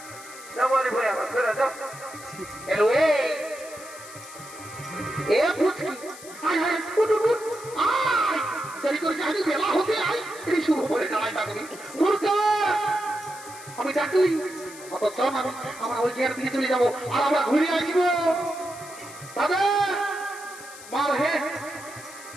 বাড়ি ভয়া ছেড়ে যা। হ্যালো এ পুচকি আয় আয় উঠ উঠ উঠ আয়। দেরি করে যাই বেলা হতে আয়। এই শুরু করে দাঁড়াই থাকবি মুরগা। আমি ডাকলি অত চল আমরা ওই জায়গার দিকে চলে যাবো আর আমরা ঘুরে আসবো। দাদা মার হে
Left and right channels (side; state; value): left; noise; hiss, 16 dB below the sound